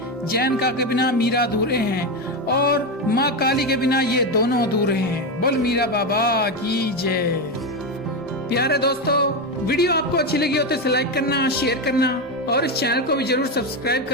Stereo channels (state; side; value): normal; both; correlation 0.12